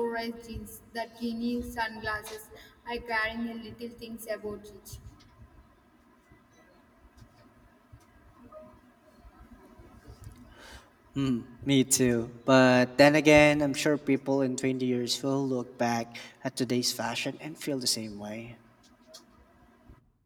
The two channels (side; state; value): both; identical; correlation 1.00